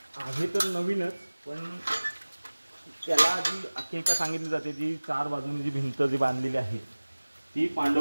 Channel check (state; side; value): inverted; both; correlation -1.00